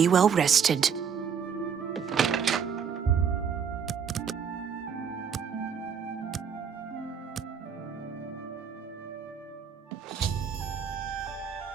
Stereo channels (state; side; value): quieter; left; 7.0 dB